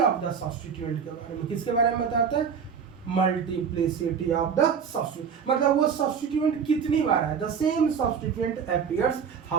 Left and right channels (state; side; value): quieter; left; 6.8 dB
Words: द सब्स्टिट्यूएंट के बारे में। किसके बारे में बताता है? मल्टीप्लिसिटी ऑफ द सब्स्टिट्यूएंट, मतलब वो सब्स्टिट्यूएंट कितनी बार है। The same substituent appears